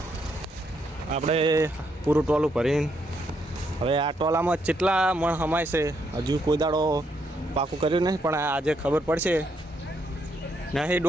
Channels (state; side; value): normal; both; correlation 0.76